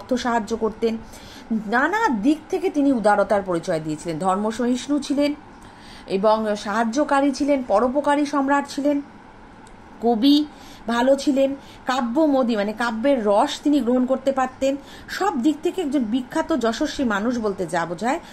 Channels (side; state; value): both; identical; correlation 1.00